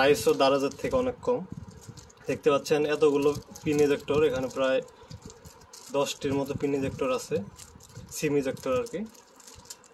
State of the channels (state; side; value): identical; both; correlation 1.00